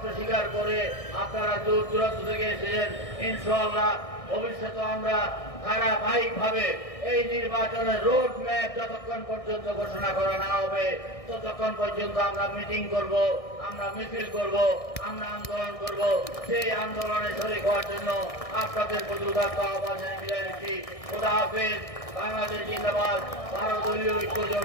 স্বীকার করে আপনারা দূর দূরান্ত থেকে এসেছেন। ইনশাআল্লাহ ভবিষ্যতে আমরা ধারাবাহিকভাবে এই নির্বাচনের রোড ম্যাপ যতক্ষণ পর্যন্ত ঘোষণা করা না হবে ততক্ষণ পর্যন্ত আমরা মিটিং করব, আমরা মিছিল করব, আমরা আন্দোলন করব। সেই আন্দোলনে শরীক হওয়ার জন্য আপনাদের প্রতি উদাত্ত আহ্বান জানিয়ে বিদায় নিচ্ছি। খোদা হাফেজ। বাংলাদেশ জিন্দাবাদ। 12 দলীয় ঐক্য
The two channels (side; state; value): right; late; 1.6 ms